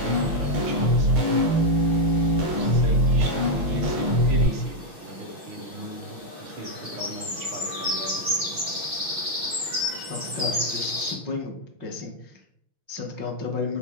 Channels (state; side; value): late; left; 6.0 ms